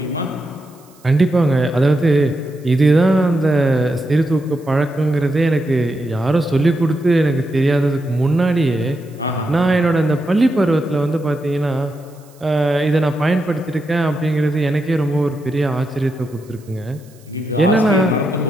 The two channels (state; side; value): noise; right; hiss, 29 dB below the sound